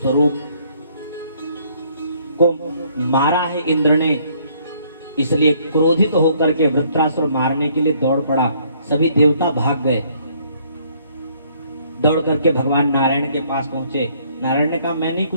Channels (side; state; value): both; inverted; correlation -0.64